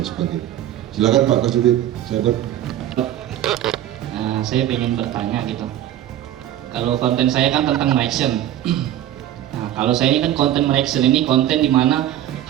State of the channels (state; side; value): quieter; left; 12.4 dB